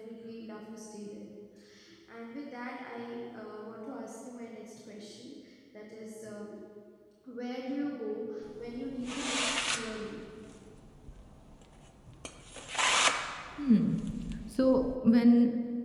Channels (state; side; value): identical; both; correlation 1.00